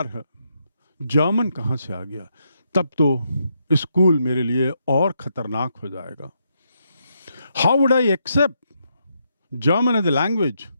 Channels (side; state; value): both; inverted; correlation -0.79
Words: है, जर्मन कहाँ से आ गया? तब तो स्कूल मेरे लिए और खतरनाक हो जाएगा. How would I accept German as a language?